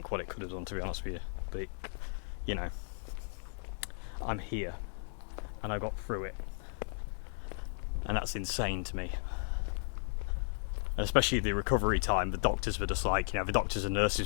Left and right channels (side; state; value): right; silent; digital silence